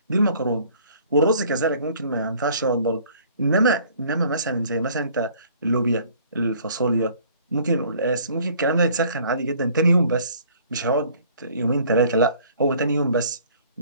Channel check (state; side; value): inverted; both; correlation -0.56